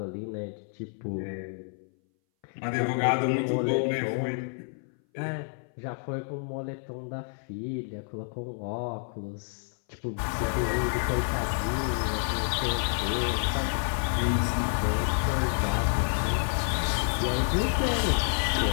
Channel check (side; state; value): right; silent; 58 dB below the other